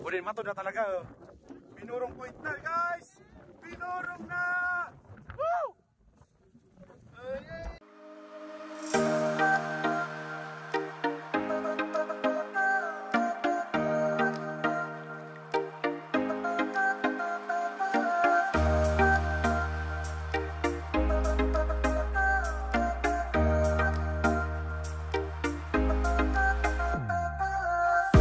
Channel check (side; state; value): both; identical; correlation 1.00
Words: Udah matod na talaga. Binurong point na guys. Binurong na. Woo!